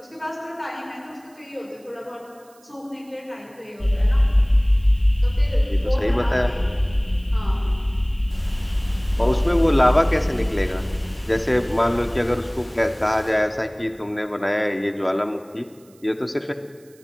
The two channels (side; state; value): right; noise; hiss, 30 dB below the sound